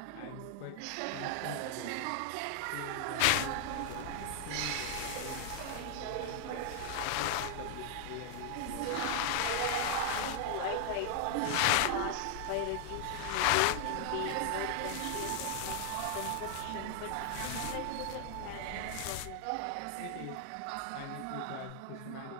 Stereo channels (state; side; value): different; both; correlation 0.00